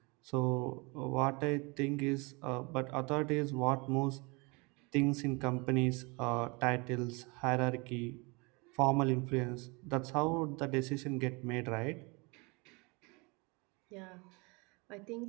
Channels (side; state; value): left; quieter; 28.2 dB